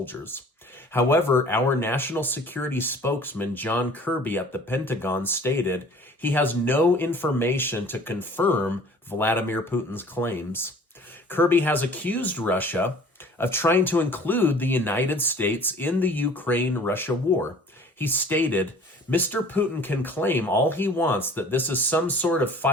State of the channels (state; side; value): normal; both; correlation 0.48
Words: However, our national security spokesman, John Kirby at the Pentagon, stated he has no information to confirm Vladimir Putin's claims. Kirby has accused Russia of trying to include the United States in the Ukraine-Russia war. He stated, "Mr. Putin can claim all he wants that this is some sort of